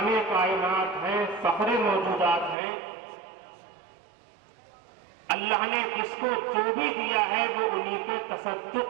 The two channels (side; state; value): left; drops out; at 2.6 s